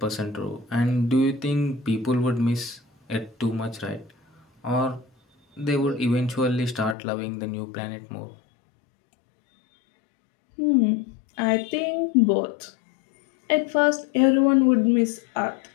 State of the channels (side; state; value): right; drops out; at 7.0 s